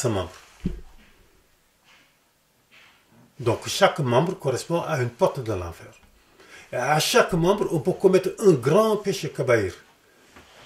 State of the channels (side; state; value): both; identical; correlation 1.00